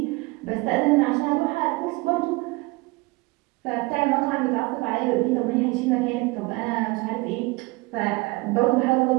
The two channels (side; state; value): left; quieter; 23.9 dB